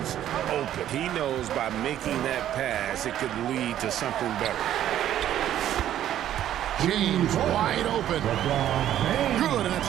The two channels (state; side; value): quieter; left; 11.6 dB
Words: open. He knows by making that pass, it could lead to something better. James wide open. Good, and